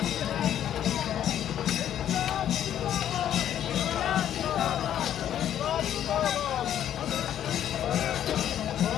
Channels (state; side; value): quieter; right; 10.6 dB